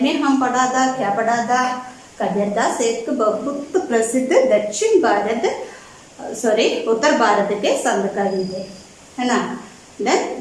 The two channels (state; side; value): identical; both; correlation 1.00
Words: में हम पढ़ा था. क्या पढ़ा था? कबीरदास एक बहुत प्रसिद्ध उत्तर भारत के संत कवि थे, है ना. देन